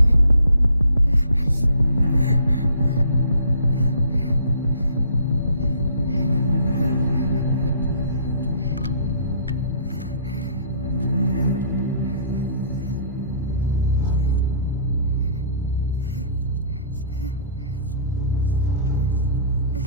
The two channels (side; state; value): both; inverted; correlation -0.55